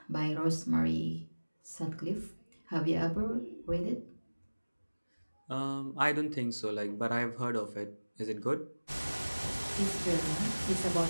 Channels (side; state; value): both; inverted; correlation -1.00